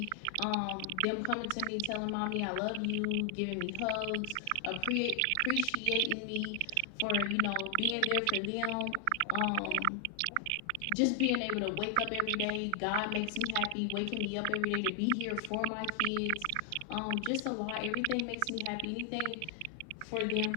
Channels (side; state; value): both; different; correlation 0.00